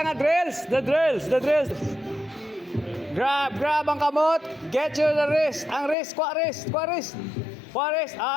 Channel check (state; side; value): drops out; right; at 6.0 s